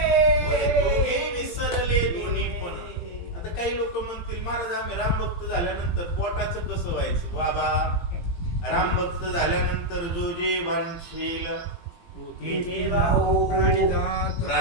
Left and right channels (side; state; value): right; late; 17 ms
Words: दोघे विसरले दोन्ही पण. आता काही लोक म्हणतील महाराज आम्ही राम भक्त झाल्यानंतर पोटाचं कसं व्हायचं. बाबा, राम भक्त झाल्यानंतर जो जे वांछेल